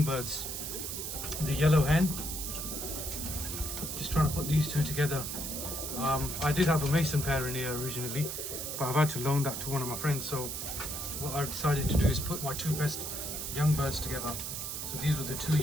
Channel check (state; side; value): noise; right; hiss, 5 dB below the sound